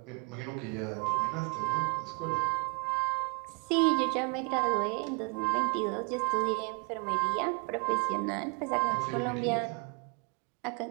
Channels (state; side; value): quieter; left; 35.1 dB